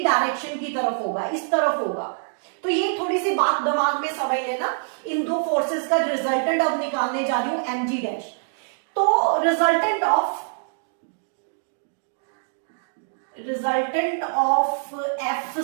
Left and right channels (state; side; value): silent; left; digital silence